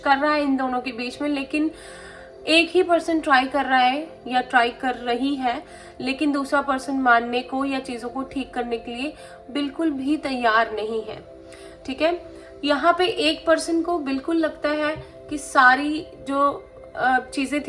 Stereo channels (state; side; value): identical; both; correlation 1.00